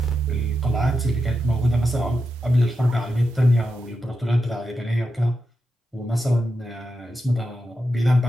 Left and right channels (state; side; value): normal; both; correlation 0.88